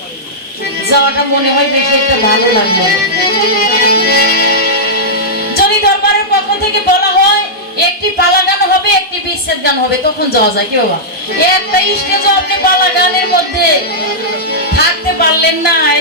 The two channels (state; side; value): normal; both; correlation -0.11